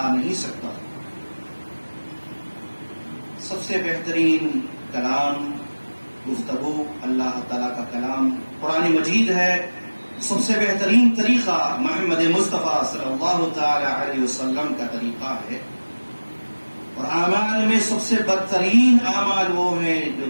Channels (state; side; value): inverted; both; correlation -1.00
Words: نہیں سکتا. سب سے بہترین کلام گفتگو اللہ تعالیٰ کا کلام قرآن مجید ہے. سب سے بہترین طریقہ محمد مصطفیٰ صلی اللہ تعالی علیہ وسلم کا طریقہ ہے. اور اعمال میں سب سے بدترین اعمال وہ ہیں جو